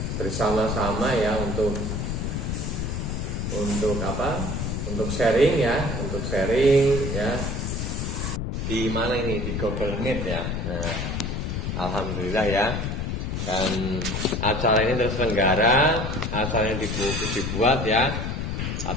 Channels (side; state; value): left; noise; rumble, 2 dB below the sound